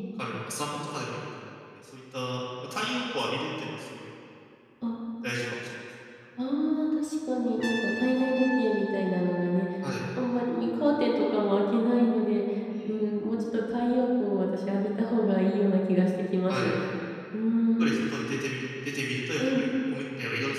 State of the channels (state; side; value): identical; both; correlation 1.00